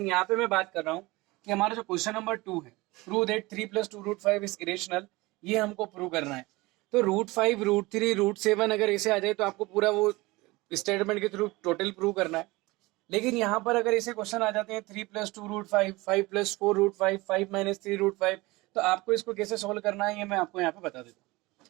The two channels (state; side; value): quieter; left; 21.9 dB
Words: पे मैं बात कर रहा हूँ कि हमारा जो क्वेश्चन नंबर 2 है, prove that 3 + 2 root 5 is irrational, ये हमको प्रूव करना है। तो रूट 5, रूट 3, रूट 7 अगर ऐसे आ जाए तो आपको पूरा वो स्टेटमेंट के थ्रू टोटल प्रूव करना है। लेकिन यहाँ पर अगर ऐसे क्वेश्चन आ जाते हैं 3 + 2 रूट 5, 5 + 4 रूट 5, 5 - 3 रूट 5, तो आपको इसको कैसे सोल्व करना है ये मैं आपको यहाँ पे बता देता हूँ।